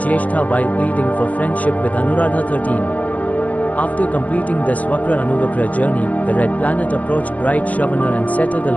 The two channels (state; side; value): late; right; 0.076 ms